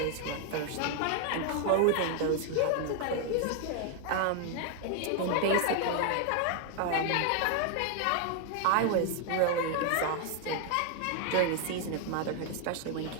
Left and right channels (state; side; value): different; both; correlation 0.00